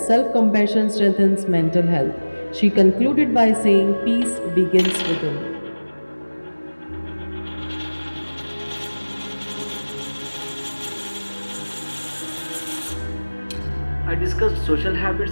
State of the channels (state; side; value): inverted; both; correlation -1.00